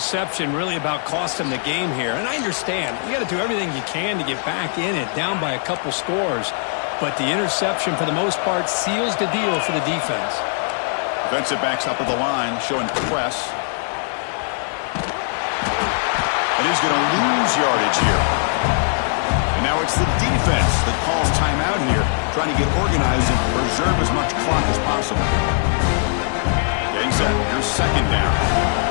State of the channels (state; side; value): silent; right; digital silence